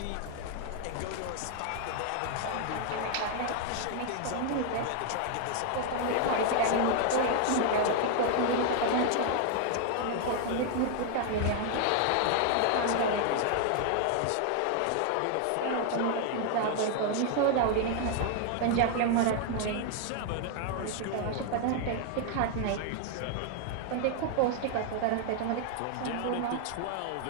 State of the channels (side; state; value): both; different; correlation 0.00